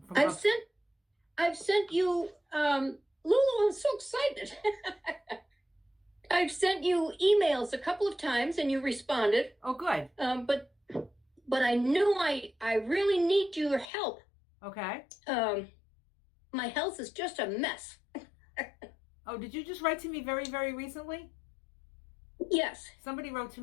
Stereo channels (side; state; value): right; drops out; at 13.9 s